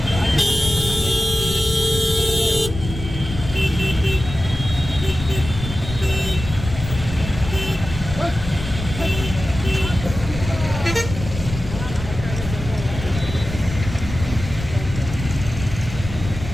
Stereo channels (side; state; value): left; noise; rumble, 8 dB below the sound